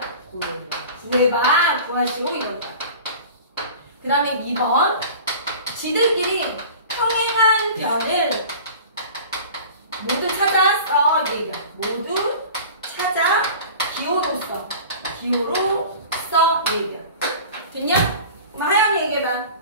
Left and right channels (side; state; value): both; inverted; correlation -0.40